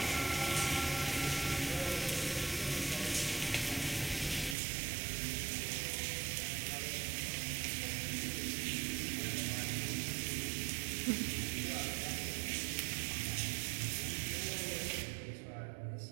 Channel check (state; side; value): drops out; left; at 4.5 s